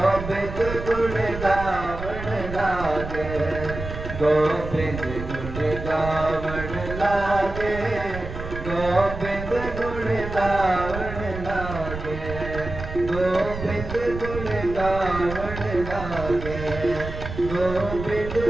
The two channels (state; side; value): noise; right; rumble, 8 dB below the sound